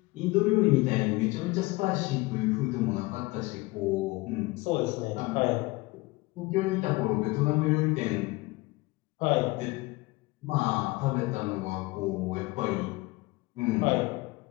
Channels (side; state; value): right; quieter; 22.4 dB